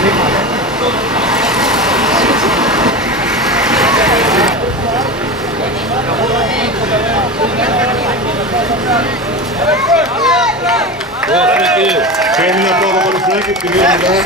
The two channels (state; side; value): normal; both; correlation 0.25